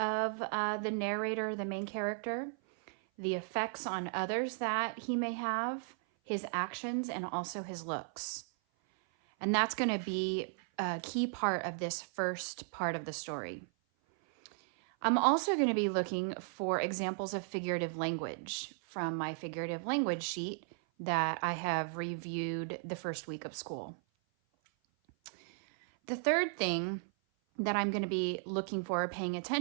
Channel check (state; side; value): silent; left; 54 dB below the other